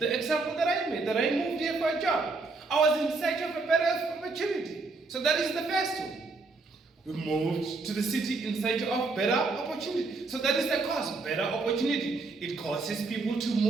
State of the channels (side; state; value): left; quieter; 3.8 dB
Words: example that I made, that I moved here for a job. I was in search of a better opportunity. So that is the first one. We moved to the city in search of better opportunity. So that is the cause, better opportunity. It causes people to